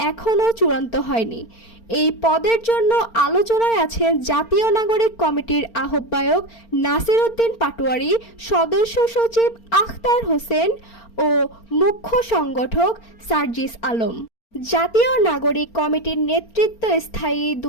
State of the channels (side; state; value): right; late; 4.4 ms